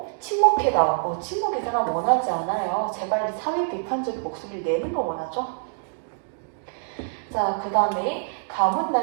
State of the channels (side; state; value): left; silent; digital silence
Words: 침묵해다오. 침묵 이 사람 원하지 않아요. 제발 사회 비판적인 목소리를 내는 걸 원하죠. 자, 그 다음에 가뭄